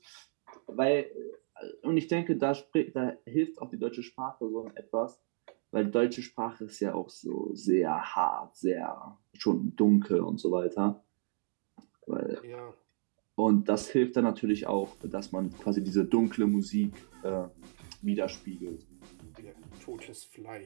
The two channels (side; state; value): left; silent; digital silence